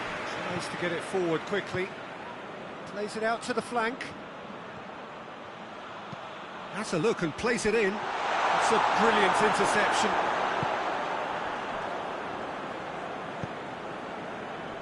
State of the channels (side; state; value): both; identical; correlation 1.00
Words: Tries to get it forward quickly. Plays it out to the flank. Has a look and plays it in. It's a brilliant interception.